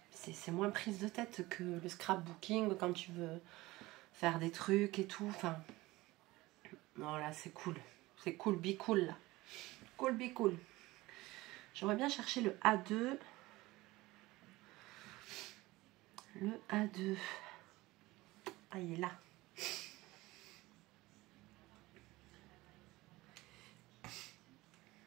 c'est moins prise de tête que le scrapbooking quand tu veux faire des trucs et tout. Enfin, non, là, c'est cool. C'est cool, be cool, là. Cool, be cool. J'aimerais bien chercher le A2. Le A2. Ah, il est là.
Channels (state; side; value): quieter; left; 19.7 dB